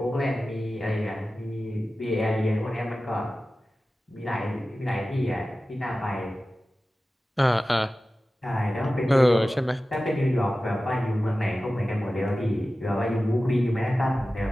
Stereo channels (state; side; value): normal; both; correlation 0.95